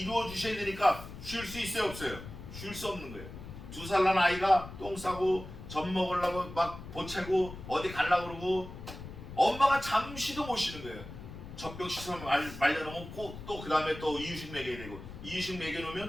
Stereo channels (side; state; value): left; noise; rumble, 12 dB below the sound